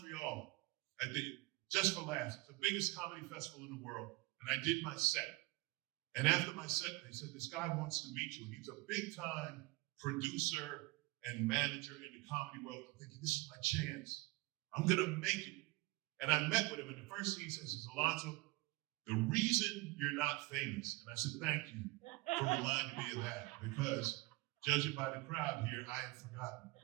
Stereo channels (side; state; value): left; quieter; 21.2 dB